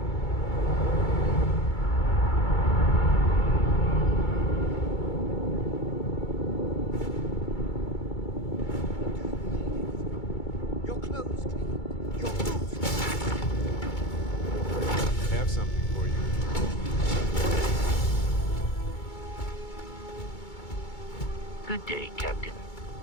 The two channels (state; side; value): late; right; 2.2 ms